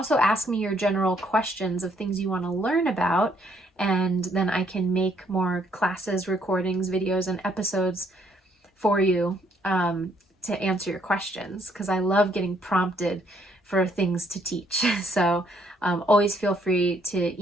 ask me your general questions of things you want to learn about, and then I can make more classes, recordings, videos, and episodes for you to answer your questions, because I love getting prompted for things to teach. So always feel free to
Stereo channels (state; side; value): normal; both; correlation 0.69